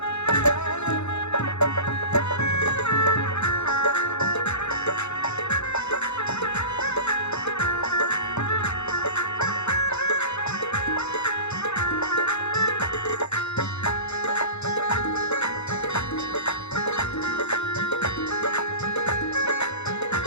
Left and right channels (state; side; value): late; right; 0.81 ms